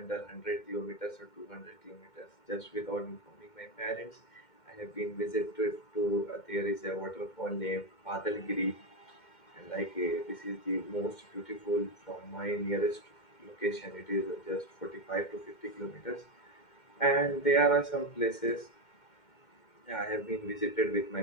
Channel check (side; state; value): right; late; 2.1 ms